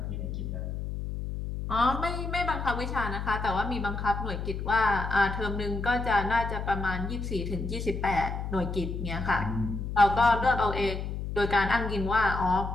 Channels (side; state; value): left; noise; hum, 5 dB below the sound